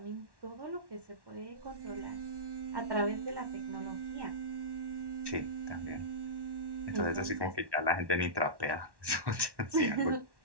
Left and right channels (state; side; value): late; left; 1.1 ms